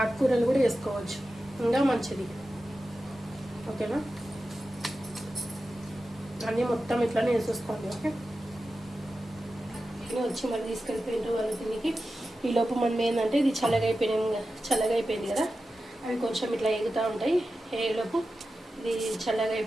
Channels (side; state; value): both; normal; correlation 0.92